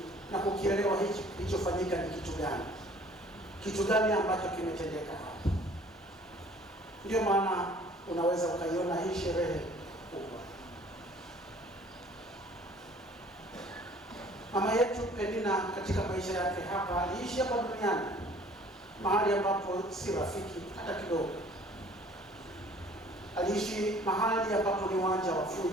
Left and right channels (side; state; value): both; normal; correlation 0.53